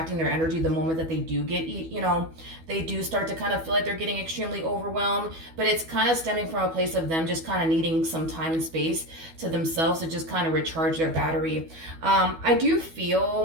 their energy the moment that they do get, they do start to kind of feel like they're getting extremely overwhelmed, but it's kind of stemming from a place of them just kind of needing some time and space to themselves to just kind of recharge their battery. I do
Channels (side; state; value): left; late; 12 ms